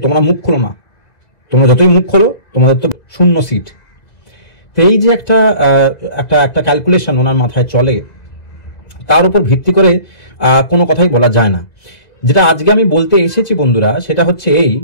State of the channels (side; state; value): right; late; 2.0 ms